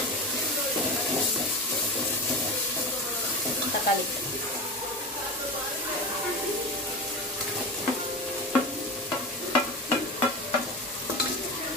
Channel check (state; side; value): noise; left; rumble, 30 dB below the sound